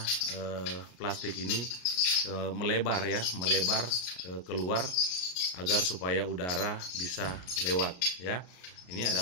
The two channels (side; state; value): right; late; 33 ms